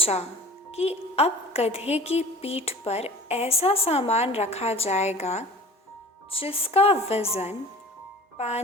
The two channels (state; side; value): normal; both; correlation 0.43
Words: कि अब गधे की पीठ पर ऐसा सामान रखा जाएगा जिसका वज़न